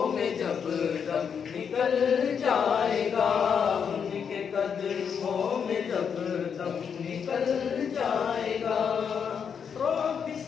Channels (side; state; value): right; quieter; 7.0 dB